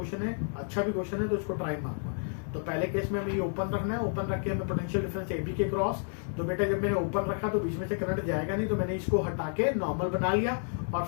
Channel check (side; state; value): right; silent; 56 dB below the other